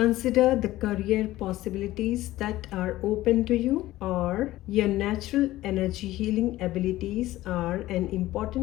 the career possibilities that are open to you और your natural energy healing abilities are an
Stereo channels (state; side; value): quieter; right; 16.2 dB